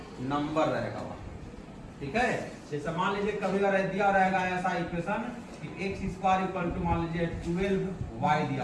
नंबर रहेगा वहां, ठीक है। जैसे मान लीजिए कभी दिया रहेगा ऐसा इक्वेशन कि x स्क्वायर इक्वल टू मान लीजिए 12y दिया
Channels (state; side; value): identical; both; correlation 1.00